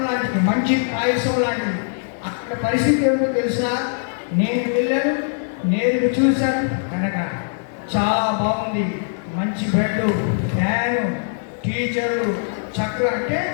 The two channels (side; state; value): right; silent; 65 dB below the other